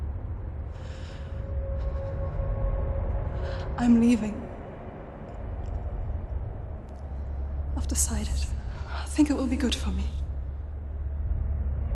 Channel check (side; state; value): both; identical; correlation 1.00